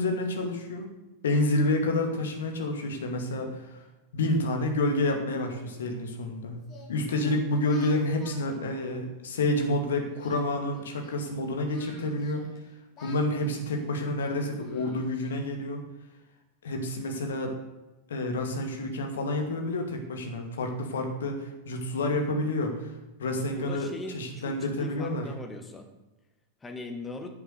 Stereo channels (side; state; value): both; normal; correlation -0.17